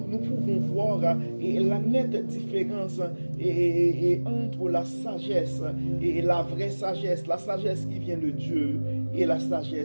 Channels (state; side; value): inverted; both; correlation -1.00